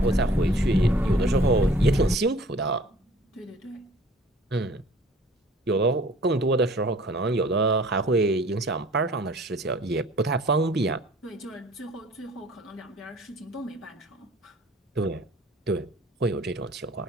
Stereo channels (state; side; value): normal; both; correlation 0.51